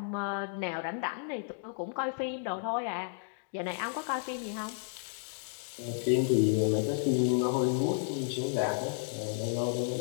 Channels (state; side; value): silent; right; digital silence